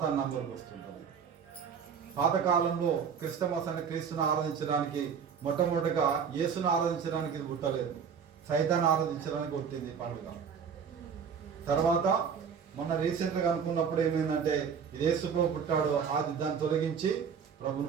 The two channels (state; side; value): quieter; left; 6.8 dB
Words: నంబర్కి వస్తుంటుంది. పాతకాలంలో క్రిస్టమస్ అంటే క్రీస్తుని ఆరాధించడానికి మొట్టమొదటిగా యేసును ఆరాధించడానికి ఇది పుట్టలేదు, సైతాన్ని ఆరాధించడానికి పుట్టింది పండుగ. తర్వాత మొన్న రీసెంట్గా అనుకున్నప్పుడు ఏమైందంటే ఇది యేసు ప్రభు పుట్టాడు, అది దాన్ని తొలగించి